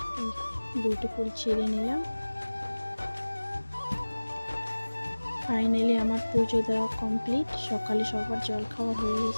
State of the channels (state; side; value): inverted; both; correlation -1.00